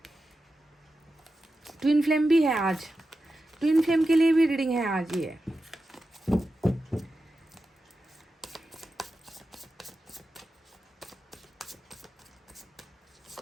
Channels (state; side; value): normal; both; correlation 0.91